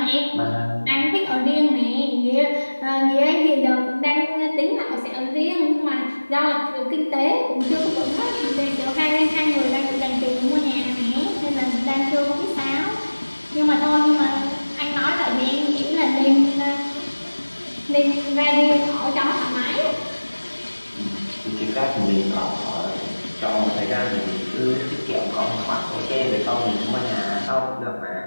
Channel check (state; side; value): inverted; both; correlation -1.00